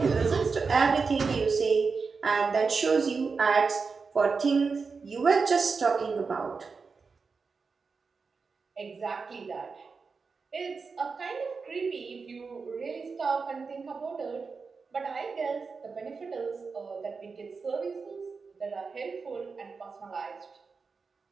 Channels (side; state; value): left; quieter; 4.8 dB